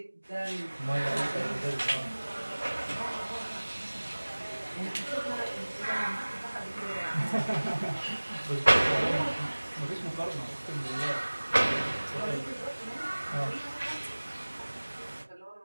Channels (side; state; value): both; inverted; correlation -1.00